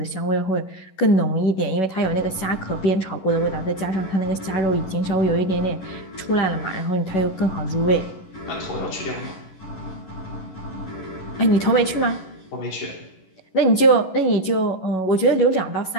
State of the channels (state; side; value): late; right; 11 ms